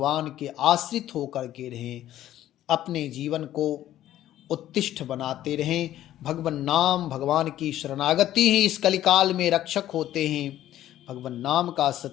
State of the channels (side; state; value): right; quieter; 12.9 dB